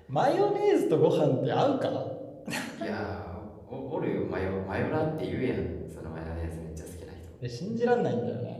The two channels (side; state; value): both; identical; correlation 1.00